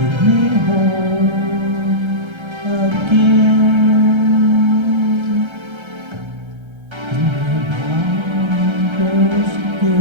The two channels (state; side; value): late; left; 1.3 ms